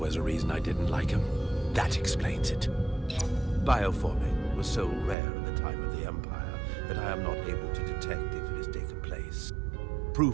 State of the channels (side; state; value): left; drops out; at 5.2 s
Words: a reason I didn't like him. That explains it. Bioforming was so rare in the time of the Empire that I am not able to detect if it has taken place.